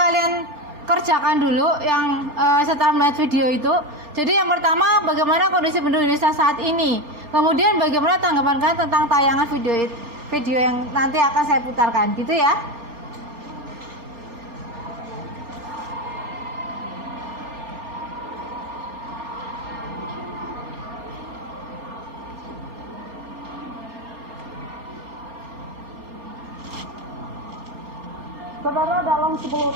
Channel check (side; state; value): left; late; 3.4 ms